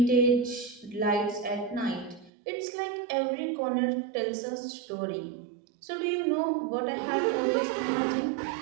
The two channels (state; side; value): drops out; left; at 2.3 s